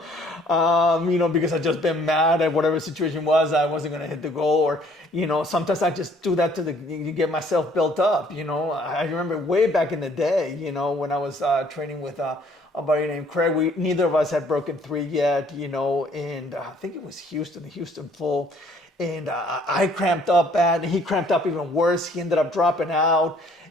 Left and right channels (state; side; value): normal; both; correlation 0.60